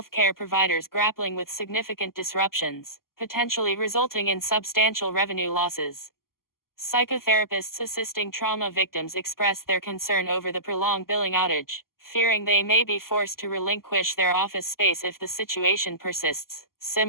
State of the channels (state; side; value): late; right; 0.92 ms